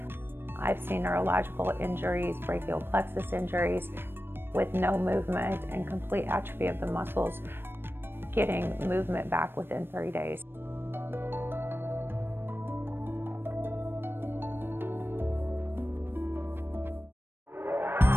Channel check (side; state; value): left; late; 0.10 ms